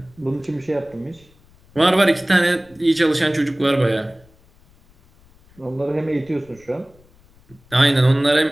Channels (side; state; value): left; noise; rumble, 29 dB below the sound